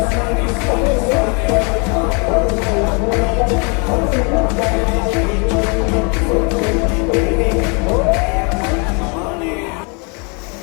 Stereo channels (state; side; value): quieter; right; 34.4 dB